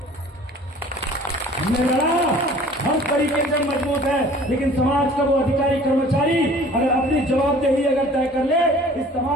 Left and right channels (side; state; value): both; normal; correlation 0.49